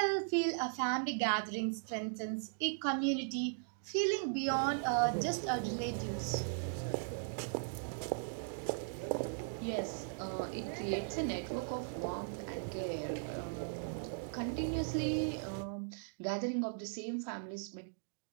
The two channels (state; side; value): silent; left; digital silence